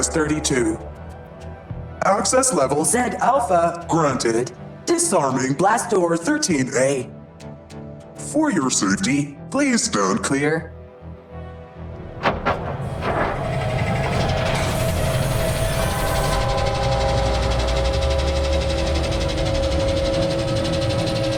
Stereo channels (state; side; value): identical; both; correlation 1.00